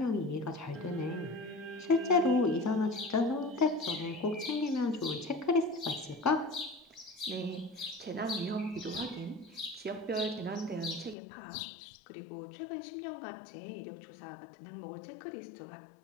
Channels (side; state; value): right; drops out; at 11.2 s